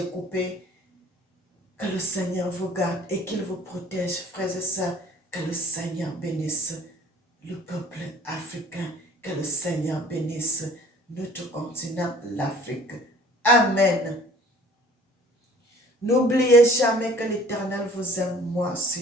coupé. Que le Seigneur vous garde et qu'il vous protège, frères et sœurs. Que le Seigneur bénisse le peuple africain. Que le Seigneur bénisse notre continent, l'Afrique. Amen. N'oubliez jamais que l'Éternel vous aime, moi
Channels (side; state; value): both; normal; correlation 0.52